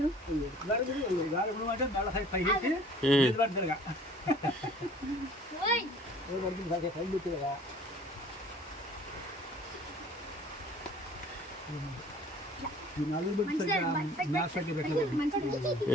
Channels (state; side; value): normal; both; correlation 0.50